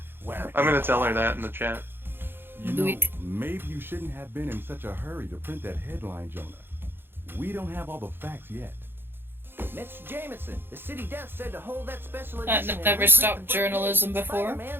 I'm gonna tell her that in the chat. You know, maybe you shouldn't have been in such a hurry to print that headline, Jonah. We don't have all the facts yet. Mr. Jameson, the city death said to hold that special I've edition. and never reprint stopped the journalism before.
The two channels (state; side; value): late; left; 0.10 ms